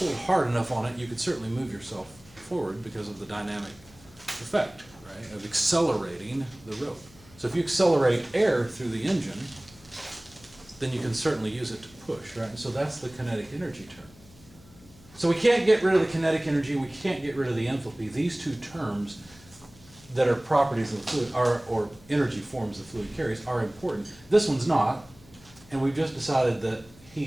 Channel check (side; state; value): left; noise; hum, 24 dB below the sound